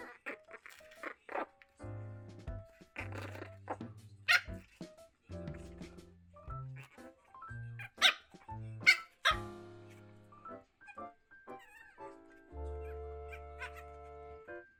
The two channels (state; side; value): identical; both; correlation 1.00